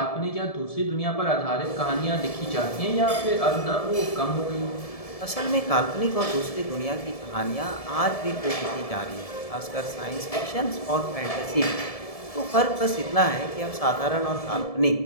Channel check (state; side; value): late; right; 1.7 ms